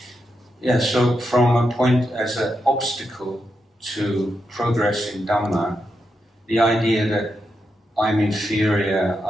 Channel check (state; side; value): normal; both; correlation 0.85